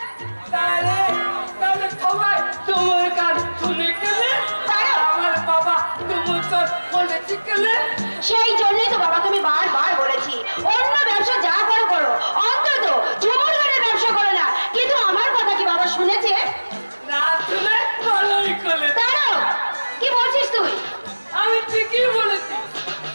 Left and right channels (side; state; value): both; inverted; correlation -1.00